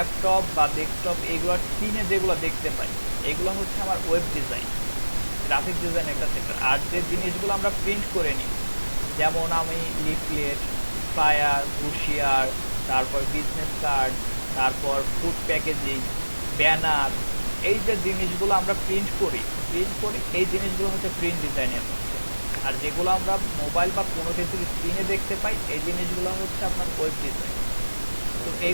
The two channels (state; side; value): inverted; both; correlation -1.00